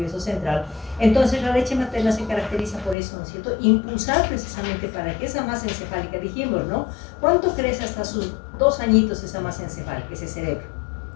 central, entonces la leche materna se caracteriza por eso, ¿no es cierto?, impulsar precisamente para que esa masa encefálica, dijimos, ¿no?, ¿cuánto crece hasta sus 2 añitos esa masa encefálica, ese cerebro?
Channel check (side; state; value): right; drops out; at 3.0 s